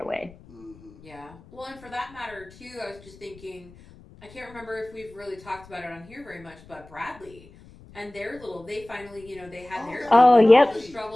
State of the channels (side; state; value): left; noise; rumble, 22 dB below the sound